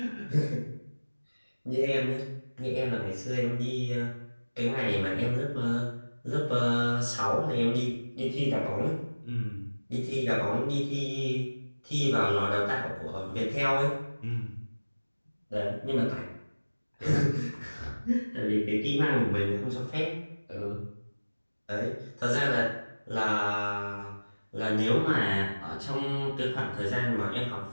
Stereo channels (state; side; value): inverted; both; correlation -1.00